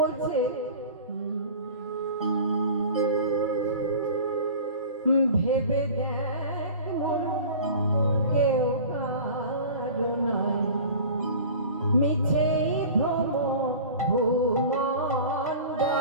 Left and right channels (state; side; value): inverted; both; correlation -0.39